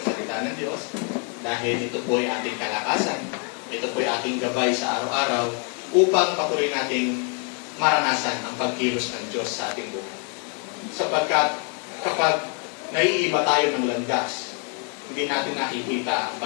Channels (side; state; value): right; quieter; 36.6 dB